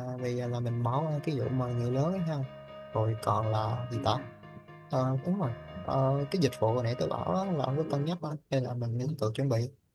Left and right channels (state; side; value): identical; both; correlation 1.00